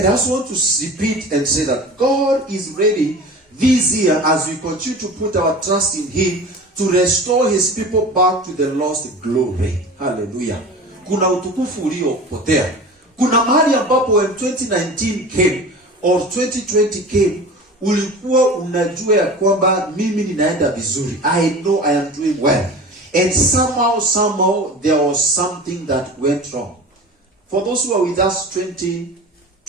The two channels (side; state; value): both; normal; correlation 0.36